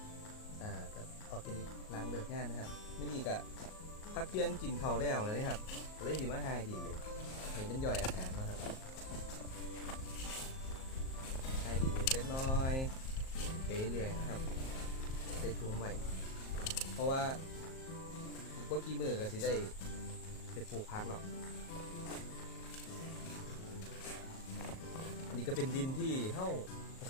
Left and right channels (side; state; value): right; late; 38 ms